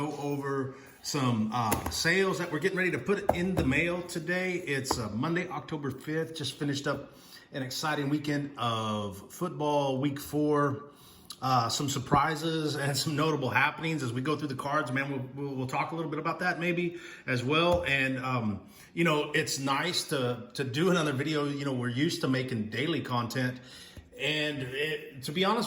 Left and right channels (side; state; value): both; identical; correlation 1.00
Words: over some sales that we're getting ready to put in the mail today. It's Monday, October 5th. Just finished up an exciting weekend of football, week 4. Some surprises and some notable happenings as we go through the cards, man. We'll talk a little bit about that maybe as well. And, it's nice to do another video. We're used to making daily content. And to be honest